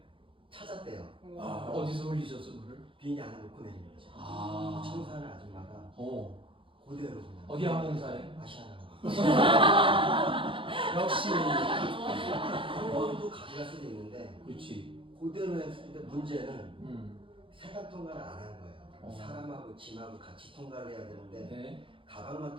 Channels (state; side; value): late; left; 0.25 ms